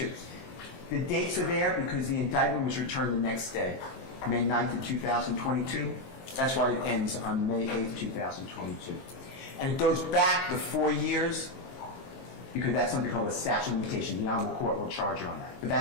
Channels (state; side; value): late; right; 23 ms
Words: The dates are there because the indictment was returned the next day, May 9th of 2022. That's why it ends on May 8th, 2022. And it goes back the 4 years because that's something called a statute of limitation. The Honorable Court will charge you on that. But